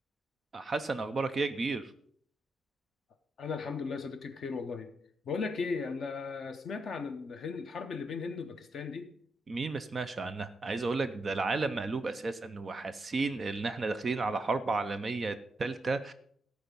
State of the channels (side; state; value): both; normal; correlation 0.82